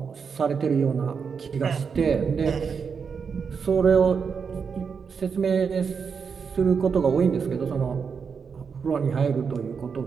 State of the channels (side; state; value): left; quieter; 6.0 dB